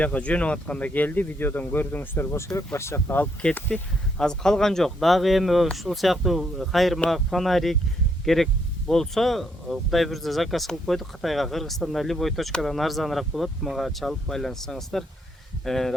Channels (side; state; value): both; normal; correlation 0.73